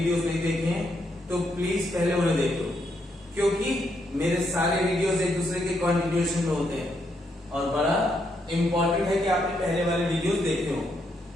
नहीं देखे हैं तो प्लीज पहले उन्हें देख लो, क्योंकि मेरे सारे वीडियोस एक दूसरे के कंटिन्यूएशन में होते हैं और बड़ा इंपॉर्टेंट है कि आपने पहले वाले वीडियोस देखे हो।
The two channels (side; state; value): both; normal; correlation 0.77